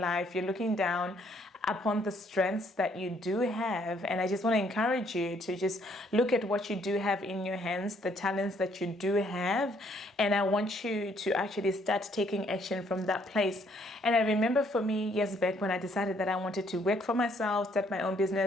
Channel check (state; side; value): normal; both; correlation 0.67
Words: life. You're looking down upon the strengths that you do have. And I just want to encourage you to just look at what you do have in your hands, the talents that you do have. And I want you to actually start taking action from that place. And I remember for me, years back, when I decided that I wanted to work for myself, start my own